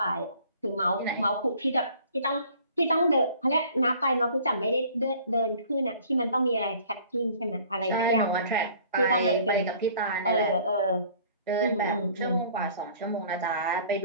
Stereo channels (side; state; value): both; inverted; correlation -0.53